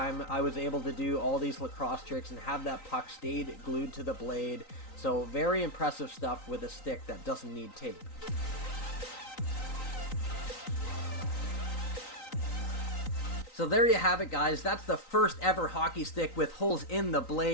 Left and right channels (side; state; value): right; late; 3.9 ms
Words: I was able to do all these lacrosse tricks and have that puck stayed glued to the blade. So very impressive stuff with a stick that doesn't need tape. So there you have it, guys. That's the first ever hockey stick with holes in the